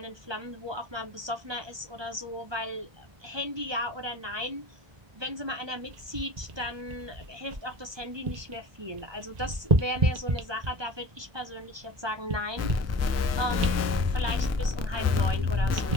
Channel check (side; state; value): left; late; 1.2 ms